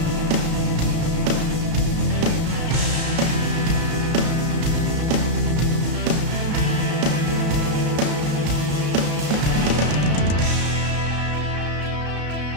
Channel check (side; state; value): left; late; 34 ms